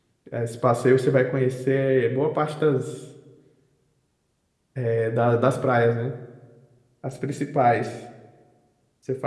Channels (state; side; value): identical; both; correlation 1.00